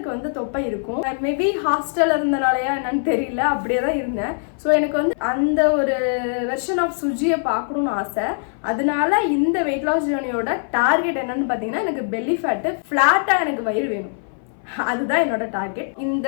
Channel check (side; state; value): right; silent; 57 dB below the other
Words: வந்து தொப்பை இருக்கும். மேபி ஹாஸ்டலில் இருந்தனாலையா என்னன்னு தெரியல, அப்படியே தான் இருந்தேன். ஸோ எனக்கு வந்து அந்த ஒரு வெர்ஷன் ஆஃப் சுஜியை பார்க்கணும்னு ஆசை. அதனால இந்த வெயிட் லாஸ் ஜேர்னியோட டார்கெட் என்னன்னு பார்த்தீங்கன்னா எனக்கு பெல்லி ஃபேட்டு ஃப்ளாட்டாக எனக்கு வயிறு வேணும். அதுதான் என்னோட டார்கெட். இந்த